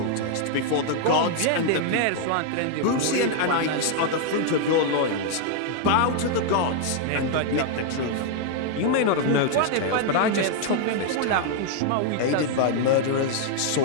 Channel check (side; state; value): both; different; correlation 0.00